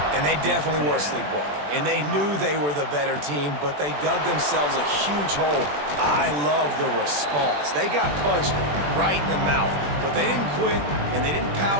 And they definitely were sleepwalking. And they knew they were the better team, but they dug themselves a huge hole. I love the response. They got punched right in the mouth, but they didn't quit, and they didn't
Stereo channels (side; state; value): left; late; 20 ms